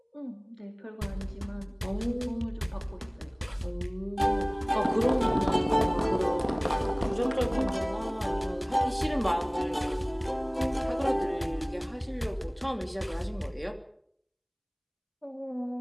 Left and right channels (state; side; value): identical; both; correlation 1.00